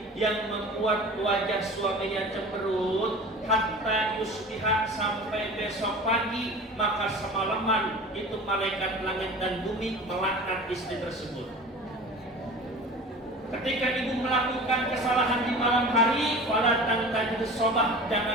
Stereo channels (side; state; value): both; normal; correlation 0.38